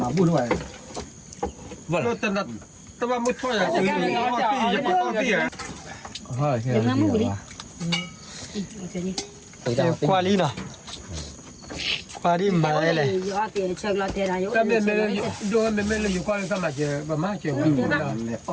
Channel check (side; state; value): both; identical; correlation 1.00